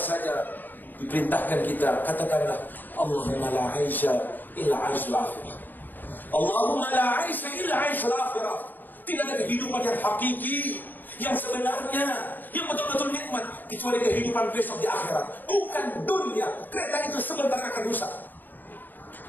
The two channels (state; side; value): late; right; 0.089 ms